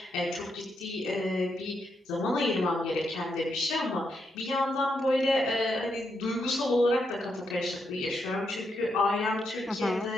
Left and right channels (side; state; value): both; normal; correlation 0.81